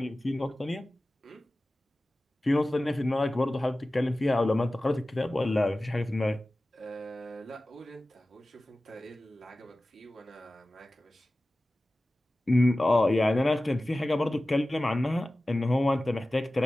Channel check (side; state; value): both; normal; correlation 0.96